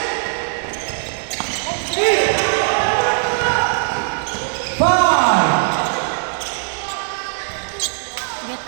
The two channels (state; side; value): silent; left; 63 dB below the other